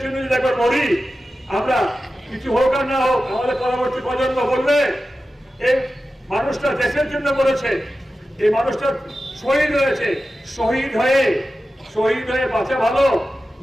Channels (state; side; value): normal; both; correlation 0.93